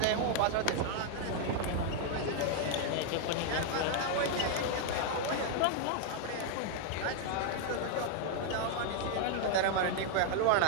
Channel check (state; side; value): different; both; correlation 0.00